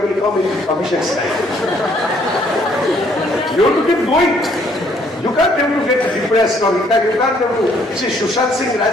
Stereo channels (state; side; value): normal; both; correlation 0.65